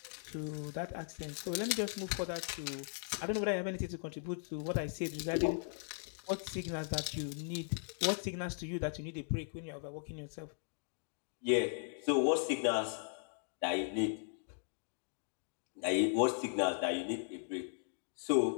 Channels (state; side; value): silent; right; digital silence